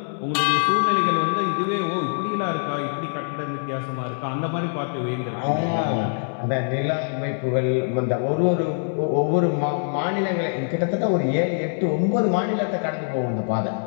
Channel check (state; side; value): silent; right; digital silence